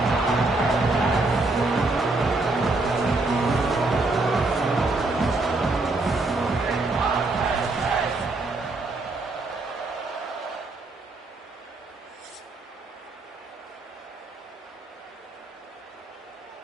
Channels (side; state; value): left; quieter; 3.2 dB